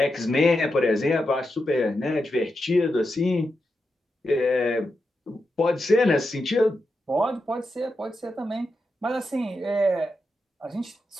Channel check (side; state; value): both; normal; correlation 0.87